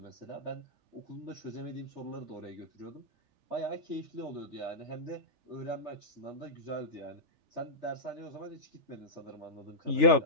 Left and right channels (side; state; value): left; late; 3.4 ms